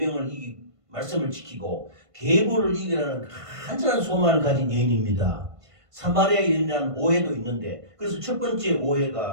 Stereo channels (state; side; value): late; left; 1.5 ms